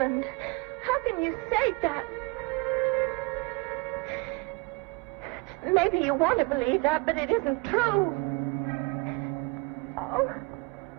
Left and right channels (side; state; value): left; quieter; 26.4 dB